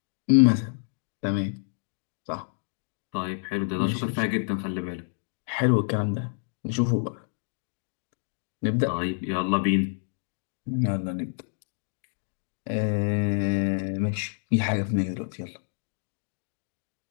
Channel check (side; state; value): right; silent; digital silence